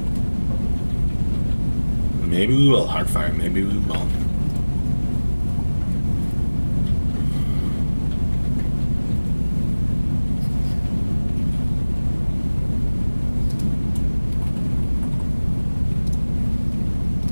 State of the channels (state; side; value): inverted; both; correlation -1.00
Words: Maybe we will, Heartfire. Maybe we will.